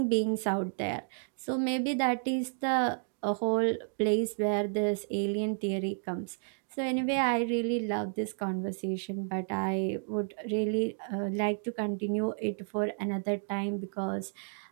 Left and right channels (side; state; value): left; silent; digital silence